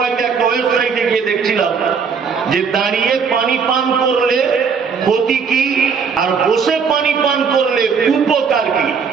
একটা ওয়েবসাইটে গিয়ে দেখছিলাম যে দাঁড়িয়ে পানি পান করলে ক্ষতি কি আর বসে পানি পান করলে উপকার কি।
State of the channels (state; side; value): quieter; left; 5.9 dB